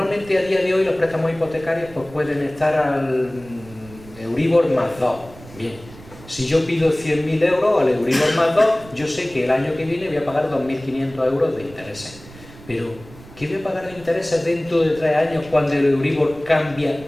a día de hoy los préstamos hipotecarios pues pueden estar al Euribor más 2. Bien, si yo pido 100.000 euros al Euribor más 2, yo sé que el año que viene voy a pagar 2.500 euros de intereses. Pero, ¿qué voy a pagar de intereses dentro de 3 años cuando el Euribor cambia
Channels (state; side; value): noise; right; rumble, 20 dB below the sound